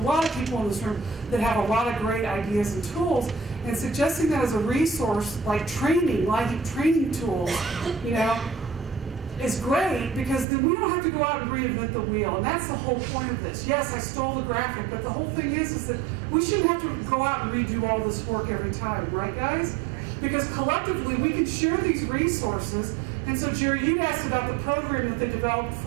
lot of people in this room that have a lot of great ideas and tools. And suggesting that as a resource, like training, LIHEAP training tools, is great because then we don't have to go out and reinvent the wheel. And that's the whole point of this. Yes, I stole the graphic, but the whole thing is that we shouldn't have to go out and redo all this work every time, right, guys? Because collectively, we can share these resources. And so, Jerry, you'd asked about the program that they developed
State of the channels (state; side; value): drops out; left; at 10.5 s